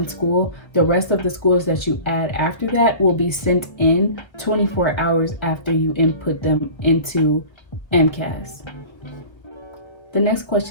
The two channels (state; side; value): late; right; 1.1 ms